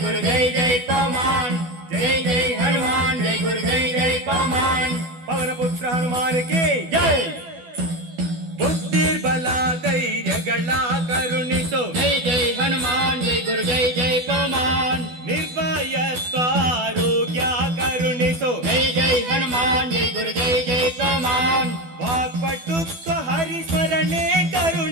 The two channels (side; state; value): left; late; 12 ms